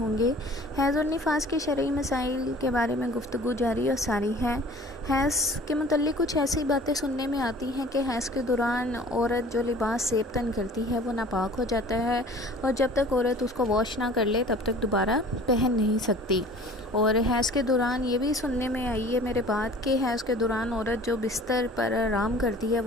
हैज़ और निफास के शरई मसाइल के बारे में गुफ्तगू जारी और सारी है। हैज़ के मुतल्लिक़ कुछ ऐसी बातें सुनने में आती हैं कि हैज़ के दौरान औरत जो लिबास सेब तन करती है वो नापाक हो जाता है और जब तक औरत उसको वॉश ना कर ले तब तक दोबारा पहन नहीं सकती। और हैज़ के दौरान ये भी सुनने में आई है मेरे बात कि हैज़ के दौरान औरत जो बिस्तर पर आराम करती है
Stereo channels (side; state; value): both; normal; correlation 0.46